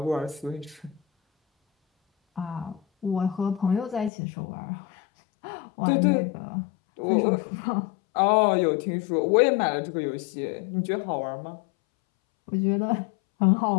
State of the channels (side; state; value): right; drops out; at 4.1 s